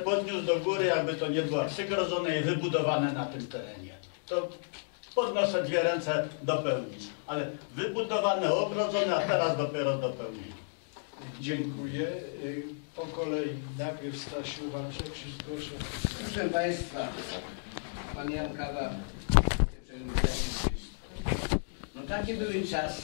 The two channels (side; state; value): right; silent; digital silence